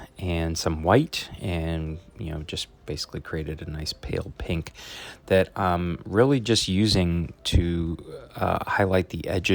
and some white, and just basically created a nice pale pink that I'm really just using to highlight the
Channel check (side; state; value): both; identical; correlation 1.00